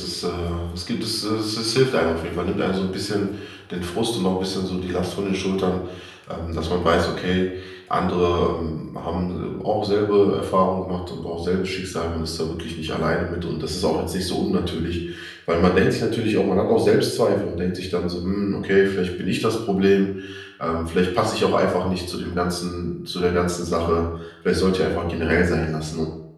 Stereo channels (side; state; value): both; identical; correlation 1.00